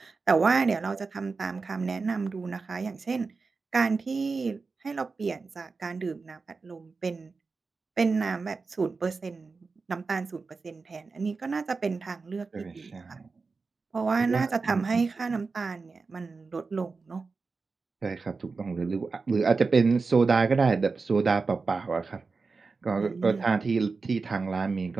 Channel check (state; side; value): quieter; left; 4.3 dB